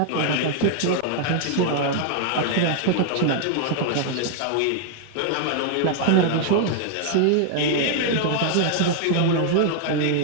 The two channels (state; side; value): different; both; correlation 0.00